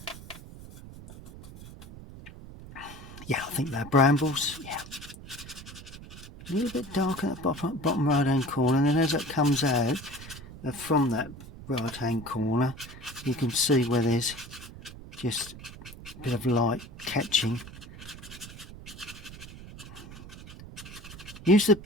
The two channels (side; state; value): right; noise; rumble, 15 dB below the sound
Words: yeah, I think they're brambles. Yeah, a little bit darker at the bottom right hand corner, and then as it comes out from that right hand corner, you can see where there's just a bit of light catching. Use the